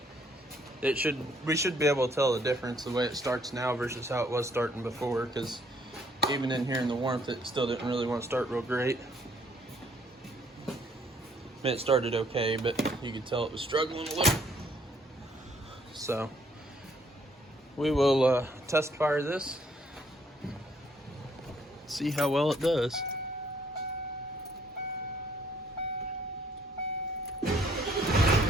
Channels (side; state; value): both; normal; correlation 0.65